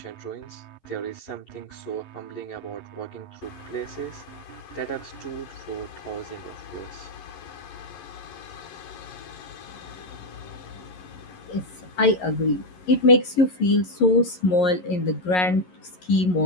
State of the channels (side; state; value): right; late; 11 ms